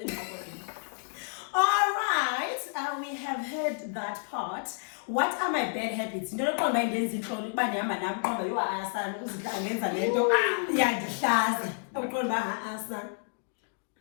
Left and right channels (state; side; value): silent; right; 58 dB below the other